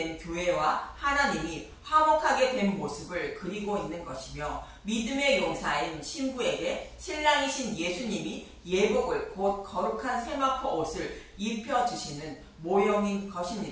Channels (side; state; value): both; identical; correlation 1.00